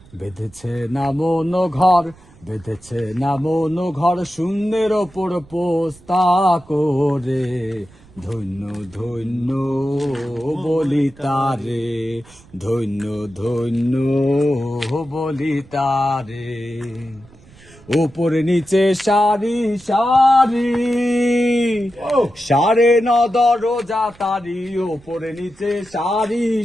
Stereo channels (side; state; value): right; noise; rumble, 24 dB below the sound